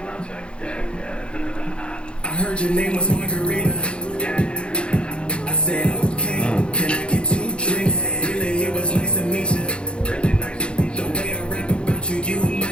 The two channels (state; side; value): late; right; 0.056 ms